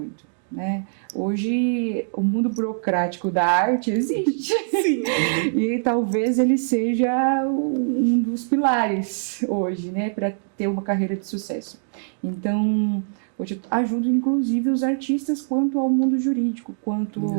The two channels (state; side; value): silent; left; digital silence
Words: né? Hoje, o mundo burocrático da arte existe. Sim. E talvez ele seja um dos pilares hoje, né? Para ter uma carreira de sucesso. Então, hoje eu ajudo, inclusive, os artistas quanto ao mundo jurídico, quanto